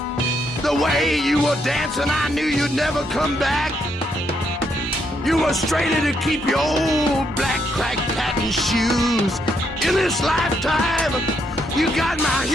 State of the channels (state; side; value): normal; both; correlation 0.76